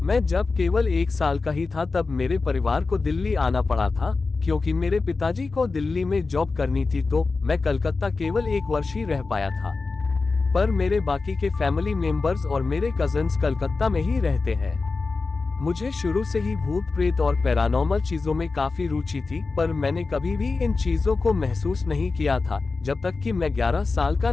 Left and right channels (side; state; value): right; quieter; 4.0 dB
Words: मैं जब केवल 1 साल का ही था तब मेरे परिवार को दिल्ली आना पड़ा था, क्योंकि मेरे पिताजी को दिल्ली में जॉब करनी थी, तो मैं कलकत्ता केवल 1 वर्ष ही रह पाया था। पर मेरे बाकी के फैमिली मेंबर्स और मेरे कजन्स कलकत्ता में ही रहते हैं। मुझे शुरू से ही भूत प्रेत और पैरानॉर्मल चीजों में काफी रुचि थी, पर मैंने कभी भी इन चीजों को महसूस नहीं किया था जब तक कि मैं 11 साल का